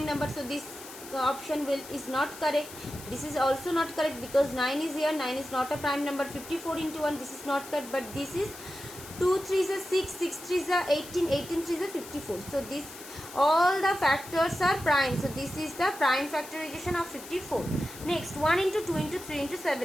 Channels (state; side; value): noise; left; hiss, 15 dB below the sound